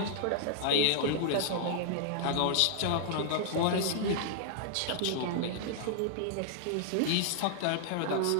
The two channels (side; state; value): both; different; correlation -0.01